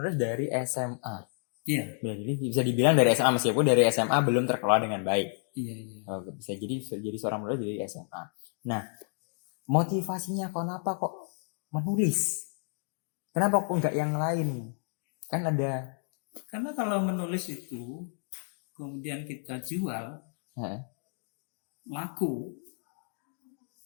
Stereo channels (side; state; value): right; silent; digital silence